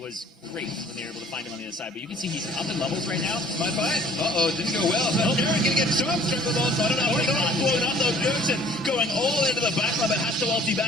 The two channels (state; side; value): normal; both; correlation 0.53